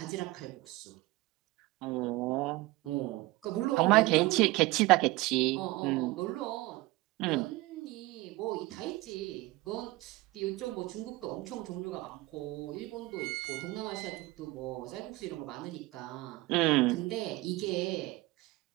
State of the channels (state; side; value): quieter; left; 20.6 dB